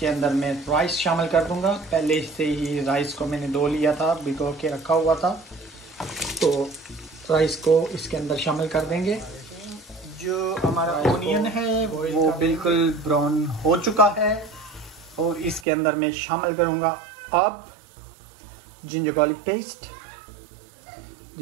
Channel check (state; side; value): drops out; left; at 15.7 s